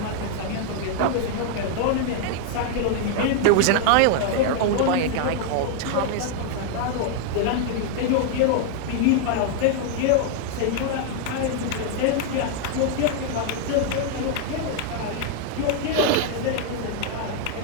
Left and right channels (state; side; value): different; both; correlation 0.00